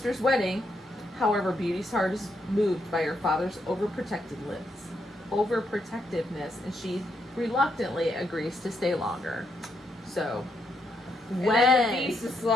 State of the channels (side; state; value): both; normal; correlation 0.78